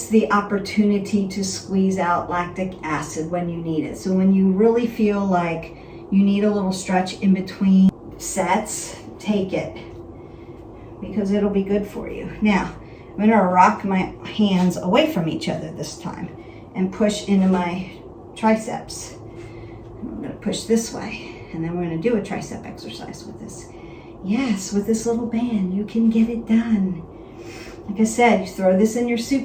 the opportunity to squeeze out lactic acid when you need it. So when you really feel like you need a little stretch in between sets, take it because it'll be good for you. Now, I'm gonna rock my hands away from each other this time and push into my triceps. I'm gonna push this way and then we're gonna do a tricep exercise with this. Yes, with this little band, you can get it done. Like I said, you throw this in your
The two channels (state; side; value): identical; both; correlation 1.00